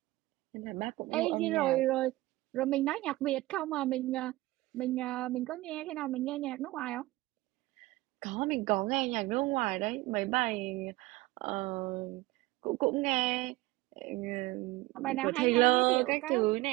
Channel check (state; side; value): quieter; left; 19.2 dB